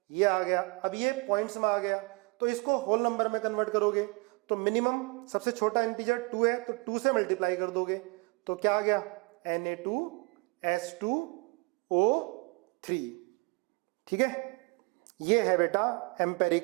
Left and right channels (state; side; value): quieter; left; 29.9 dB